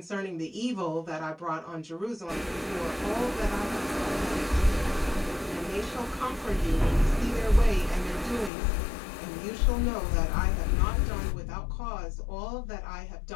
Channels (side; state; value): right; drops out; at 8.5 s